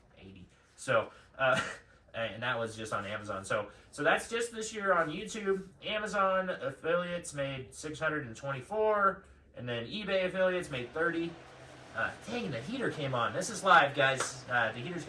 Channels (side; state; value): both; identical; correlation 1.00